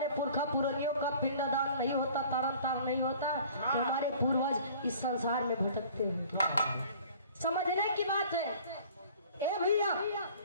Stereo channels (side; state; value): both; inverted; correlation -0.50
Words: पुरखा पुरनियों का पिंडदान नहीं होता तारण तार नहीं होता तो हमारे पूर्वज इस संसार में भटकते हैं। समझने की बात है। ए भैया